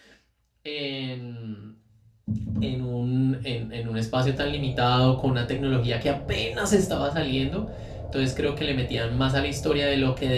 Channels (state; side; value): identical; both; correlation 1.00